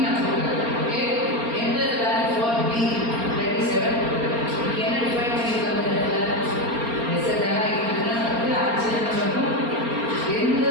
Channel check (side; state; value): left; late; 4.3 ms